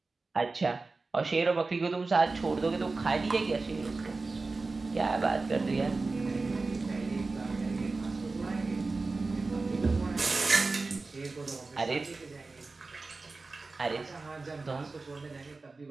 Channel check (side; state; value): left; quieter; 3.7 dB